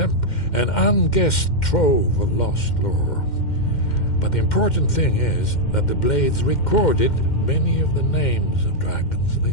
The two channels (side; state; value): right; late; 2.1 ms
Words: an unguessed trove of lost lore. But the important thing is that the Blades recorded many of the names of dragons they